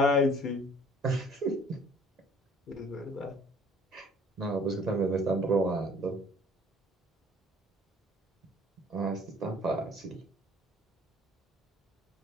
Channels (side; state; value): both; normal; correlation 0.54